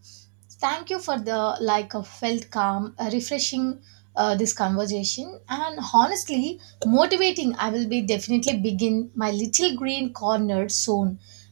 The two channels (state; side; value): silent; left; digital silence